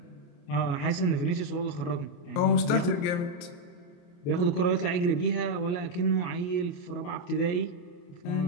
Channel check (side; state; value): right; late; 28 ms